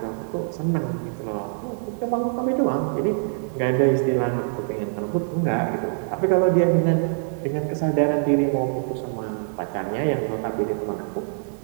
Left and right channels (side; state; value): left; silent; 62 dB below the other